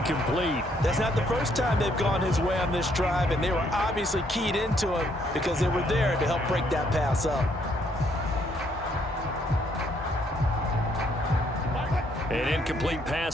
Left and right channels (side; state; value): both; normal; correlation 0.69